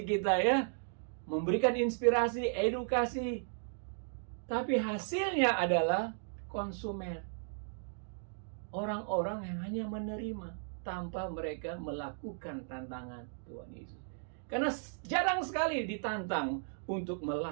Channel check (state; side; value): silent; left; digital silence